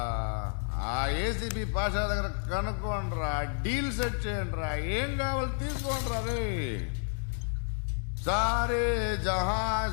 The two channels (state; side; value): silent; right; 57 dB below the other